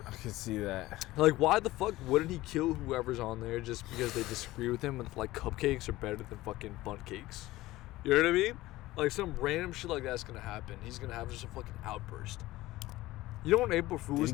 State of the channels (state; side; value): quieter; right; 17.6 dB